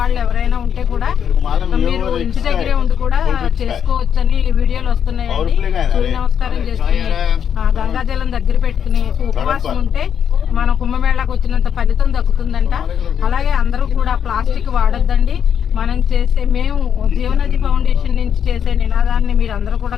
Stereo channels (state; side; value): quieter; right; 8.3 dB